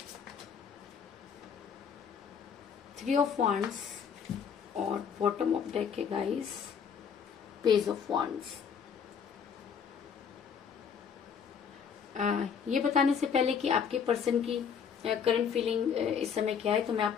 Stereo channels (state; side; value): quieter; right; 7.0 dB